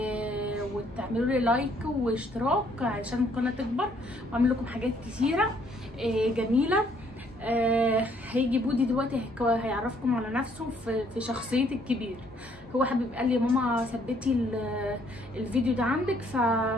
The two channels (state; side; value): normal; both; correlation 0.66